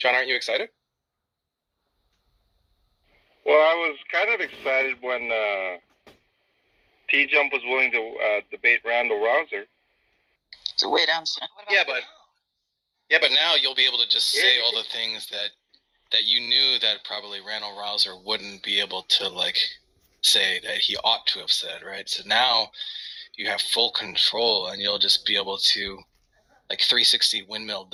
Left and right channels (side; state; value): both; identical; correlation 1.00